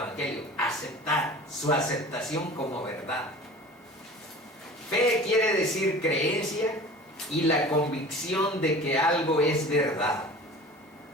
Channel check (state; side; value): normal; both; correlation 0.41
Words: aceptar, su aceptación como verdad. Fe quiere decir creencia y la convicción de que algo es verdad.